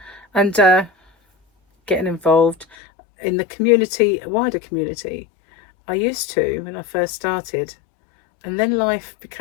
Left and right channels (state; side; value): drops out; right; at 2.8 s